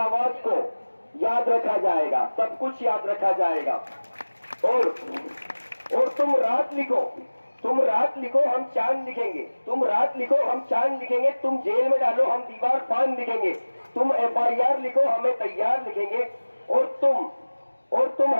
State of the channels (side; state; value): both; inverted; correlation -1.00